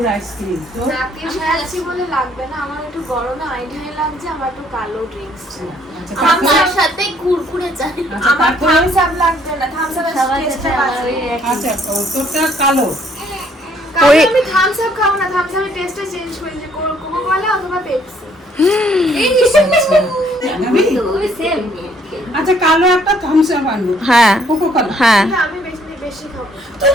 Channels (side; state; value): both; normal; correlation 0.64